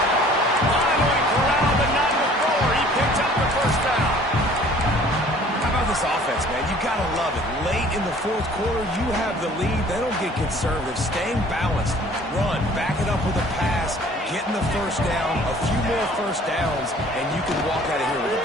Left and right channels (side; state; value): both; normal; correlation 0.52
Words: Finally corralled, but not before. He picks up the 1st down. How about this offense, man? You got to love it. Late in the 4th quarter, you have the lead. They don't get conservative. Staying balanced. Run. Back it up with a pass. Getting the 1st down. A few more 1st downs, and you can walk out of here with a